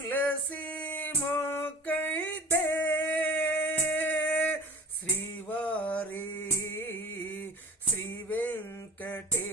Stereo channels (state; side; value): normal; both; correlation 0.41